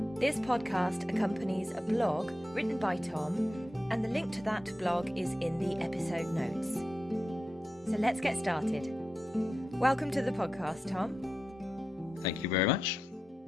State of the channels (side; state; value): both; normal; correlation 0.89